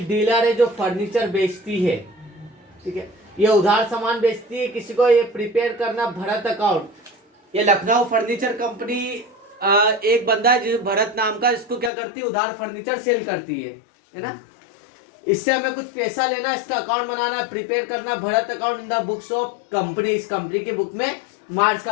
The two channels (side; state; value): right; drops out; at 11.9 s